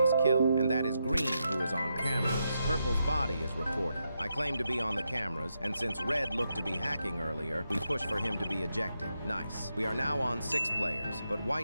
kill, and that is Green, who is on cameras. Purple's body is reported. I claim to be on the cameras, and since Red looked to be hacking earlier, we push for him to be ejected. Nice. We are now on 6 players, but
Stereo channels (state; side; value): inverted; both; correlation -0.84